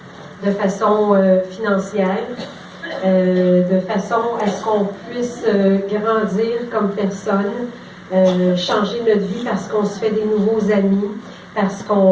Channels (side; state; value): both; identical; correlation 1.00